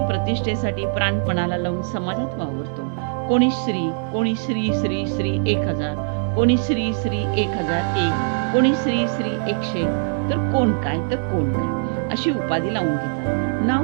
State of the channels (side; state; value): left; silent; digital silence